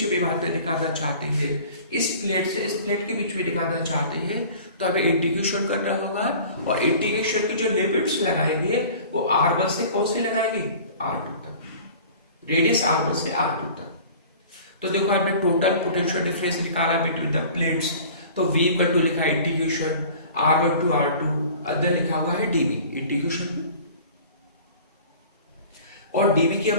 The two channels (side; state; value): both; inverted; correlation -0.44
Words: में विभाजन निकालना चाहते हैं, इस प्लेट से इस प्लेट के बीच में निकालना चाहते हैं, तो हमें इंटीग्रेशन करना होगा और इंटीग्रेशन की जो लिमिट्स लगाएंगे वो r1 से कौन से लगाएंगे, r2 तक, रेडियस r1 से r2 तक। तो देखो हमने टोटल पोटेंशियल डिफरेंस निकाला बिटवीन द प्लेट्स, तो v इक्वल टू लिखा इंटीग्रेशन r1 टू r2, अंदर लिखा हुआ है dv इंटीग्रेशन में, और dv की